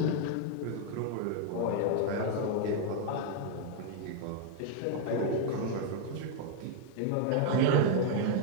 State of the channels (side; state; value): both; different; correlation 0.00